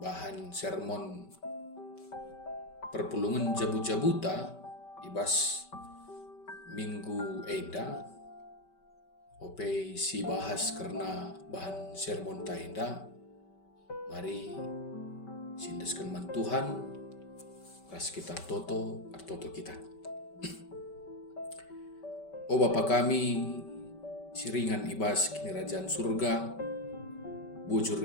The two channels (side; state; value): right; late; 5.2 ms